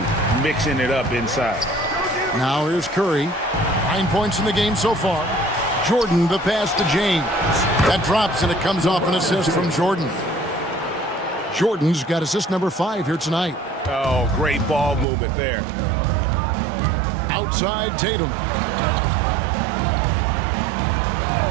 mixing it up inside. Now here's Curry. 9 points in the game so far. Jordan, the pass to James. That drops and it comes off an assist from Jordan. Jordan's got assist number 5 here tonight. Oh, great ball movement there. Outside Tatum.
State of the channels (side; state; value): left; drops out; at 15.1 s